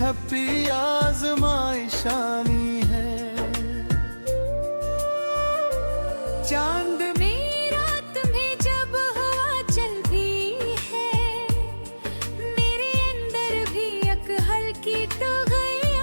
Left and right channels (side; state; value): both; inverted; correlation -1.00